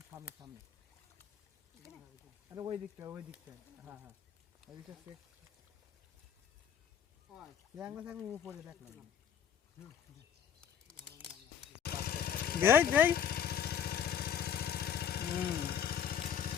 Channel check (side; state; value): right; quieter; 8.6 dB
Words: সামনে আরে ওই দিকটা হ্যাঁ ওই দিকটা আমি উপরে দেখলাম দেই